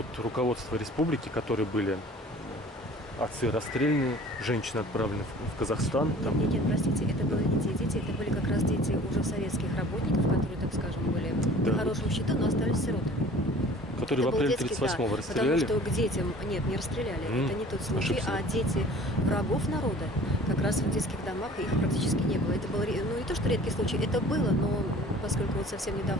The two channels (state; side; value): normal; both; correlation 0.47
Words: руководства республики, которые были отцы расстреляны, женщины отправлены в Казахстан. Там. Нет, простите, это были не те дети, это были как раз дети уже советских работников, которые, так скажем, были на хорошем счету, но остались сиротами. Которые это в апреле 38-го расстреляли? Потому что к детям, нет, не расстреляли, это не тот случай, ошибся. А дети врагов народа, как раз в детских домах их практически не было. Это было, ну не то, что редкий случай, это было, но поскольку вот совсем